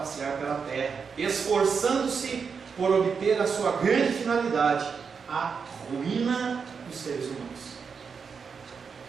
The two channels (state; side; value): quieter; left; 5.9 dB